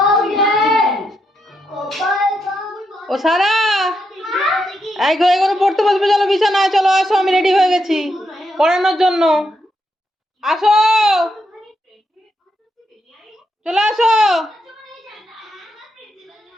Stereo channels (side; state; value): both; normal; correlation 0.82